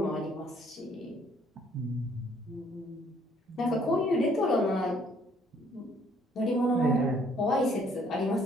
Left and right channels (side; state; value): both; normal; correlation 0.63